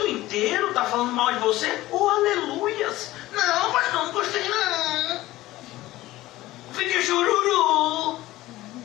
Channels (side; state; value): right; quieter; 16.9 dB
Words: inteiro está falando mal de você? Oh, aleluias! Não, pastor, não gostei não. Fique chururu.